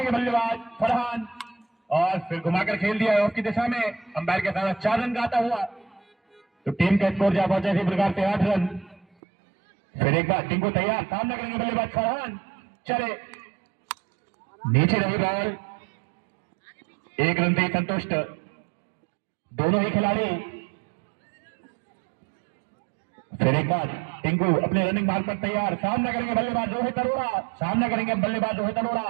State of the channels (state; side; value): drops out; left; at 9.1 s